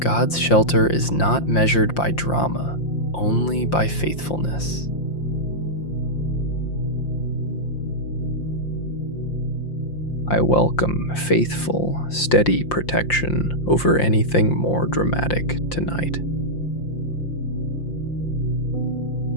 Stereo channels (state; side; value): late; right; 5.7 ms